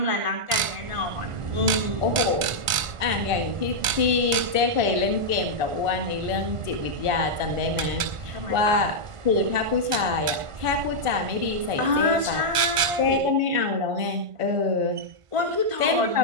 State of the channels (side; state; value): left; late; 1.5 ms